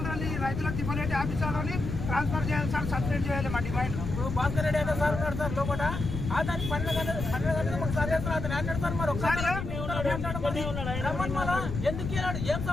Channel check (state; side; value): noise; left; rumble, 5 dB below the sound